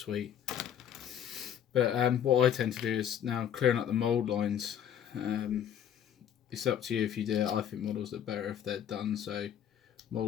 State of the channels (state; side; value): quieter; right; 9.5 dB